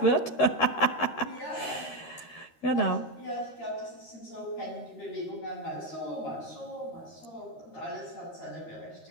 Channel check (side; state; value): right; late; 13 ms